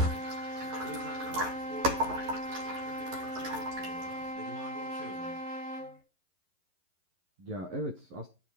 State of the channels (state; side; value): late; left; 11 ms